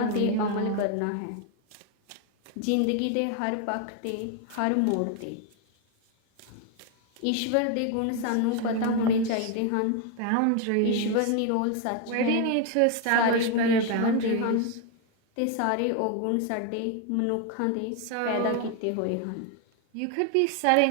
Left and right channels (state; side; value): different; both; correlation 0.01